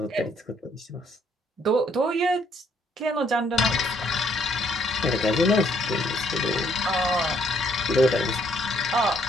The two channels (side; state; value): both; normal; correlation 0.68